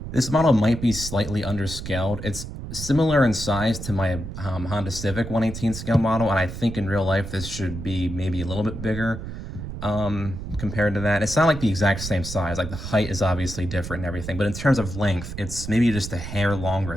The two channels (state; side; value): noise; right; rumble, 8 dB below the sound